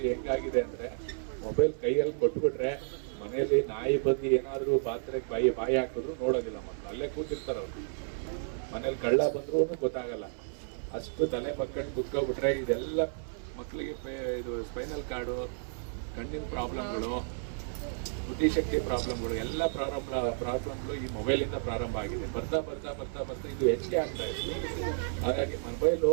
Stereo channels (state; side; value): silent; left; 56 dB below the other